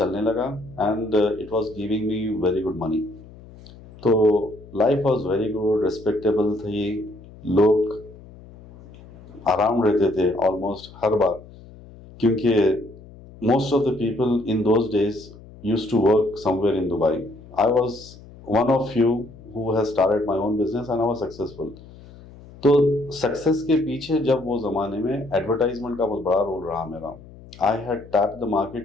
लगा and it was giving me very good money. तो life was very good, respectable थी, लोग अराउंड रहते थे ऑलमोस्ट हर बार, क्योंकि most of the people in those days use to work somewhere in Dubai. I was one of few who has started my own business and I was successful. तो success के पीछे जब वो ज़माने में एडवर्टाइजमेंट का बहुत बड़ा रोल रहा मेरा। I had tap the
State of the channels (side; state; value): left; noise; hum, 20 dB below the sound